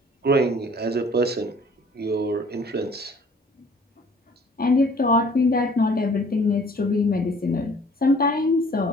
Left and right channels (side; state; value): both; normal; correlation 0.54